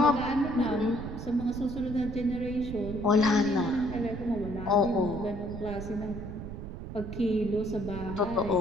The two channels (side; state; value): right; noise; rumble, 9 dB below the sound